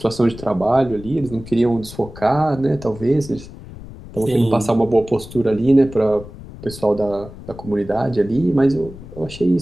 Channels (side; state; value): left; noise; rumble, 15 dB below the sound